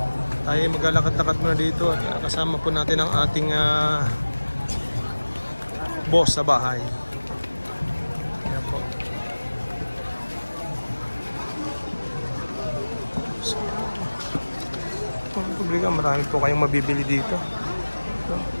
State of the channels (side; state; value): both; inverted; correlation -1.00